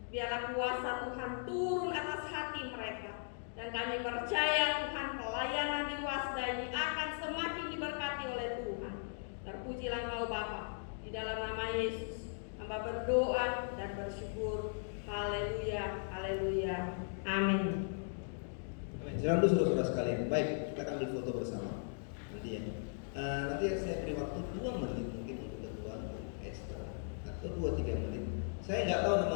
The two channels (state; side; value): silent; right; digital silence